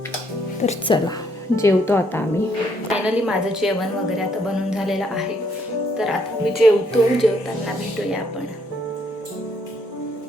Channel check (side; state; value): both; normal; correlation 0.70